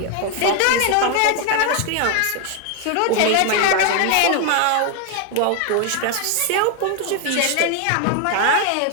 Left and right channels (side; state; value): both; different; correlation 0.01